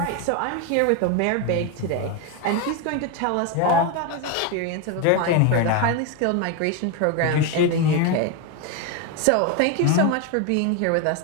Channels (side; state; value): both; different; correlation 0.02